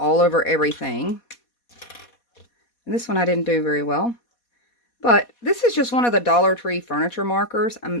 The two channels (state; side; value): late; right; 4.2 ms